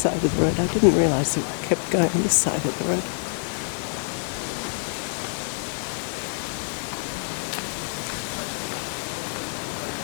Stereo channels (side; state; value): right; silent; 61 dB below the other